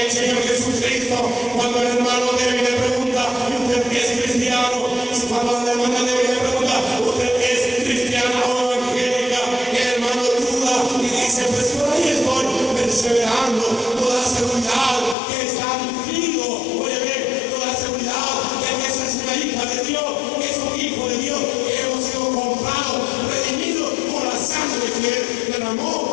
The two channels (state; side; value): drops out; right; at 15.2 s